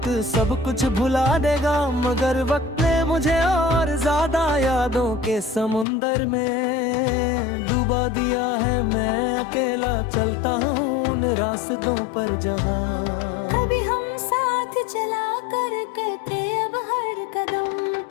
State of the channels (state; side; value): drops out; right; at 5.9 s